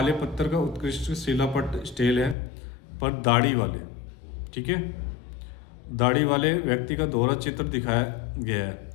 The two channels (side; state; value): right; drops out; at 2.4 s